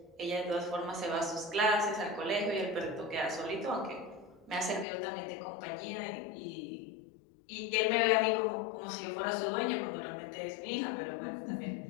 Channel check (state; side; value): drops out; right; at 4.9 s